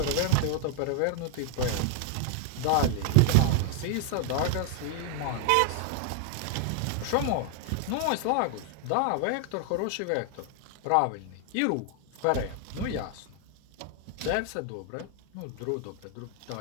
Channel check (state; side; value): different; both; correlation 0.00